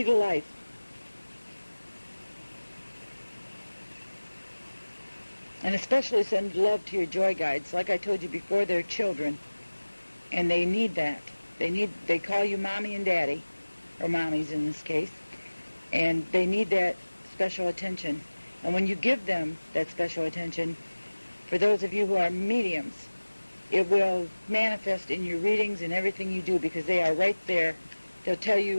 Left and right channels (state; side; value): inverted; both; correlation -1.00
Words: to life. And especially send love to your joy guides. Like I told you before, they're children, and they need that. They call you mommy and daddy, or mommies in this case, and they need that special attention. And when you give them that special attention, for those of you who are mediums, it will manifest in your readings and everything you do, because they are right there. They'll tell